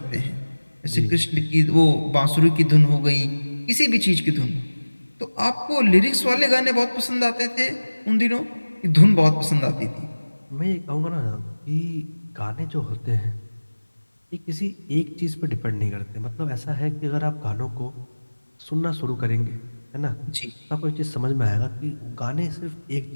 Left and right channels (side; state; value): both; inverted; correlation -1.00